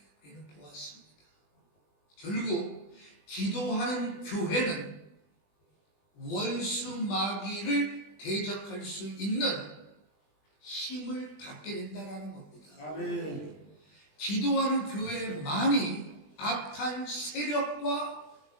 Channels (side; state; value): right; late; 20 ms